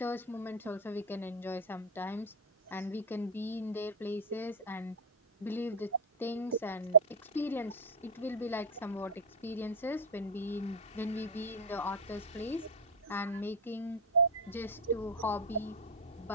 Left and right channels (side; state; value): both; normal; correlation 0.04